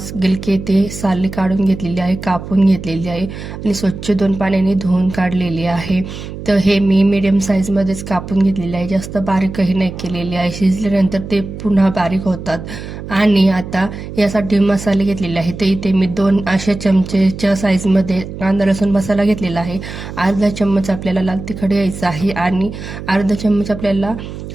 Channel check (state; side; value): noise; right; hum, 10 dB below the sound